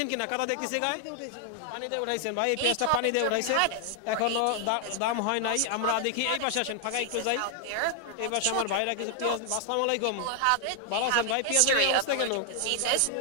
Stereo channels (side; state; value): both; different; correlation 0.00